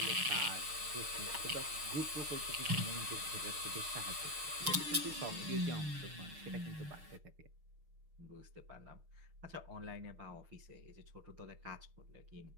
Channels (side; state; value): left; late; 6.4 ms